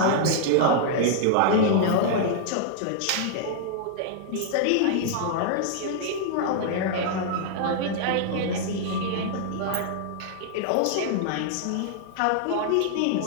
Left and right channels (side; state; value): both; different; correlation -0.01